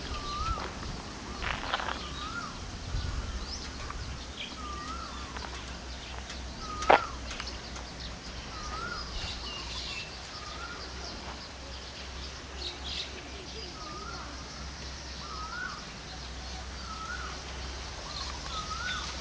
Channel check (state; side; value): identical; both; correlation 1.00